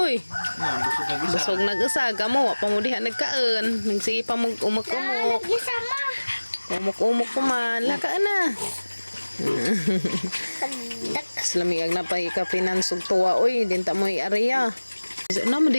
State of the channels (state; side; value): inverted; both; correlation -1.00